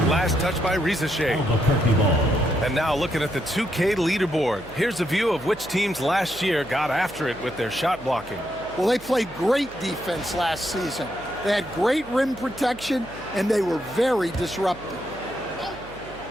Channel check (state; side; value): noise; right; hum, 19 dB below the sound